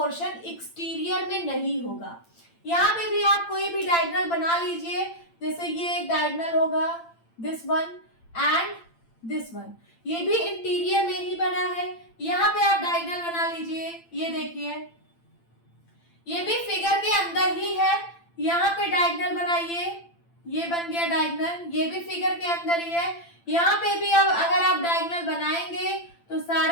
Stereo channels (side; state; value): right; late; 8.8 ms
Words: एक्सटीरियर में नहीं होगा। यहाँ पे भी आप कोई भी डायगोनल बना लीजिए, जैसे ये एक डायगोनल होगा, this one and this one, ये भी इंटीरियर में ही बना है। यहाँ पे आप डायगोनल बना लीजिए, ये देखिए, ये भी फिगर के अंदर ही है। यहाँ पे डायगोनल बनाइए, ये बन गया डायगोनल, ये भी फिगर के अंदर ही है। यहाँ पे भी अब अगर आप डायगोनल बनाएंगे तो